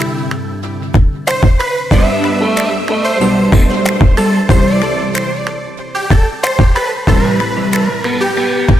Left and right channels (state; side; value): normal; both; correlation 0.86